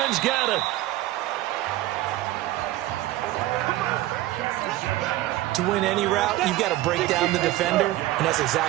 got it. To win any route, you've got to break down the defender, and that's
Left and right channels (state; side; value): quieter; left; 16.0 dB